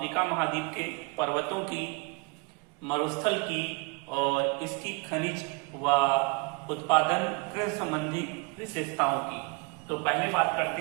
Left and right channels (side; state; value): left; quieter; 31.1 dB